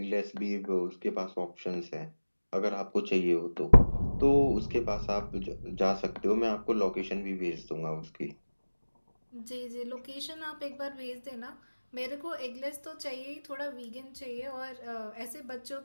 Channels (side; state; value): both; inverted; correlation -1.00